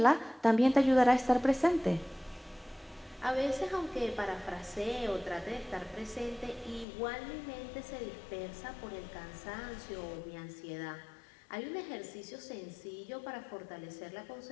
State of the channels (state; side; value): drops out; right; at 6.9 s